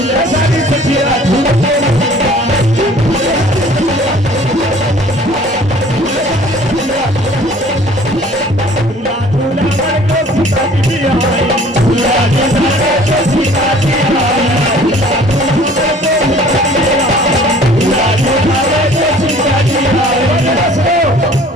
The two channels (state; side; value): normal; both; correlation 0.51